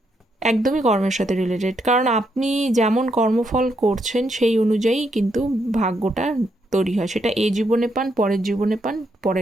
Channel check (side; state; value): both; normal; correlation 0.78